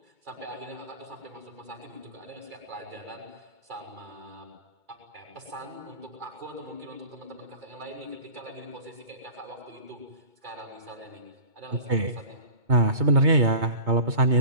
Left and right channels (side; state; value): left; late; 2.3 ms